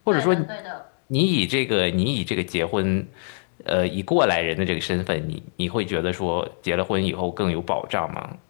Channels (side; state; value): right; silent; digital silence